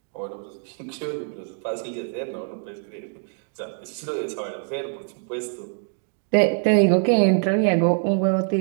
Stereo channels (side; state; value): left; silent; 62 dB below the other